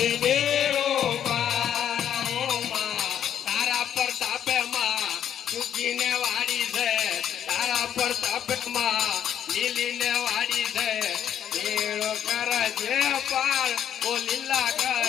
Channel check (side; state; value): right; quieter; 9.6 dB